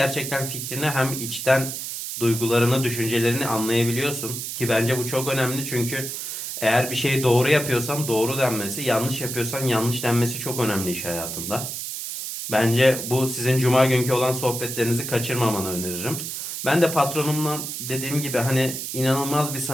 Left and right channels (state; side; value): noise; right; hiss, 6 dB below the sound